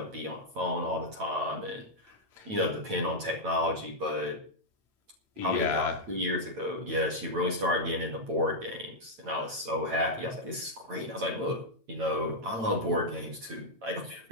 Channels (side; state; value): left; late; 8.9 ms